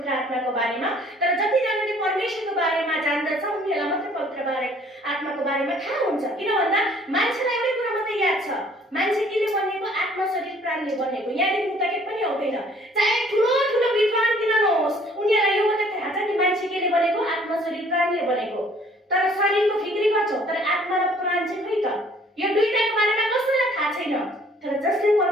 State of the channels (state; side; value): normal; both; correlation 0.57